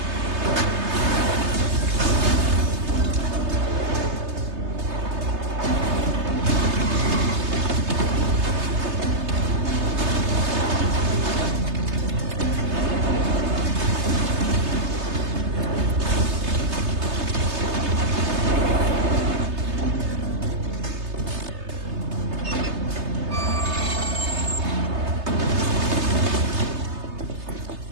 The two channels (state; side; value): late; left; 3.3 ms